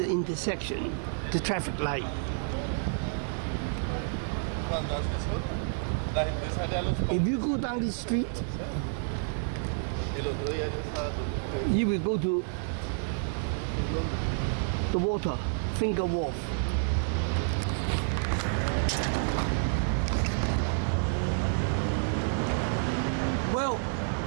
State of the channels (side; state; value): left; silent; 58 dB below the other